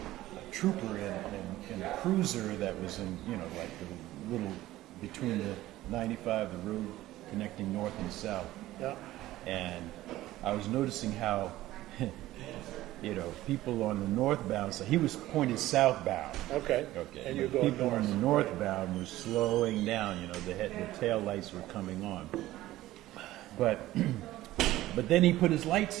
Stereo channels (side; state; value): left; quieter; 15.8 dB